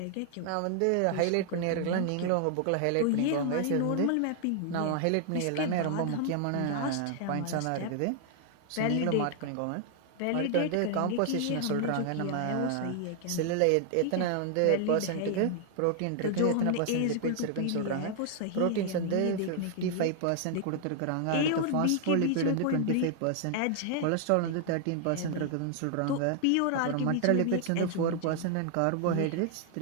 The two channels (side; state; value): both; different; correlation 0.00